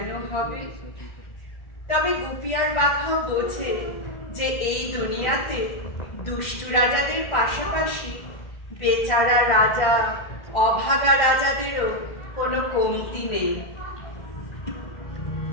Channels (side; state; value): right; late; 2.1 ms